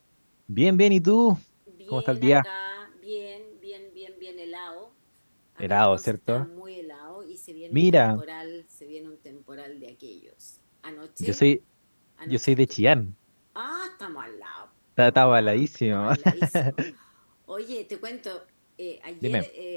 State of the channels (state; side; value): inverted; both; correlation -1.00